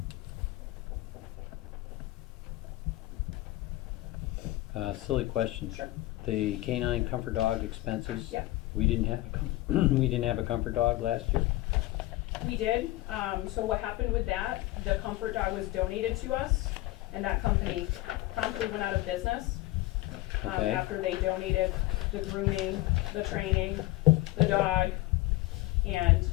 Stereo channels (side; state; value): right; quieter; 17.9 dB